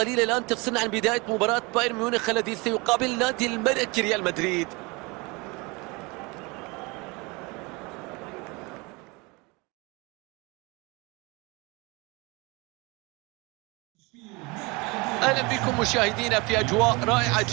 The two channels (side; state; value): left; quieter; 26.6 dB